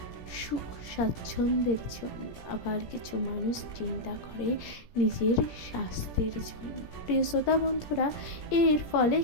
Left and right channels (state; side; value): late; right; 17 ms